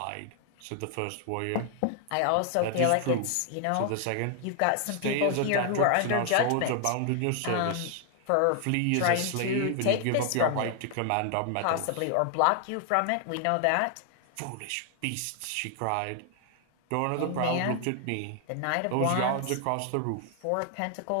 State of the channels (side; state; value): both; different; correlation 0.00